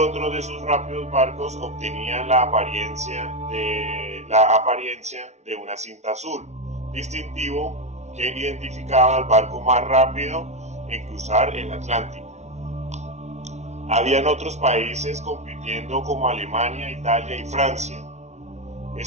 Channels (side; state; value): left; late; 0.32 ms